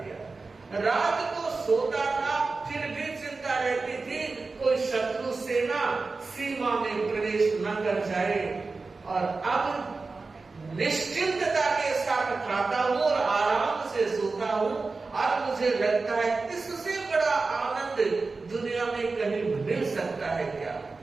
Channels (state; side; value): quieter; left; 3.9 dB